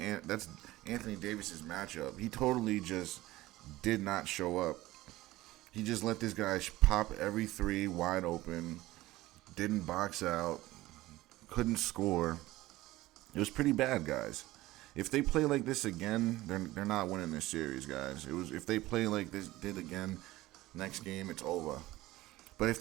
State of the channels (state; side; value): quieter; left; 17.6 dB